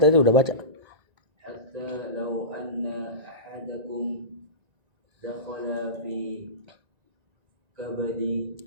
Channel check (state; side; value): late; left; 1.9 ms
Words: udah baca. Hatta law anna ahadakum dakhala fi